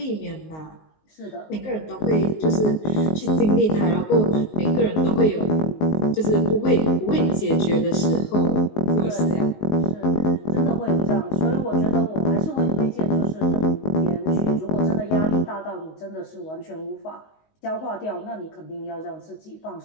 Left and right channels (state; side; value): late; right; 19 ms